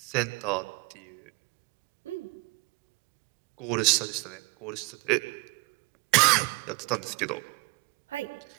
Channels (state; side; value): quieter; left; 26.4 dB